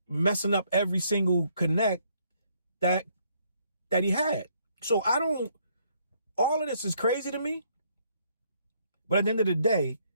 messing up every single connect that he had. So all of this is crazy to me. But at the end of the day,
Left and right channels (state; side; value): inverted; both; correlation -0.69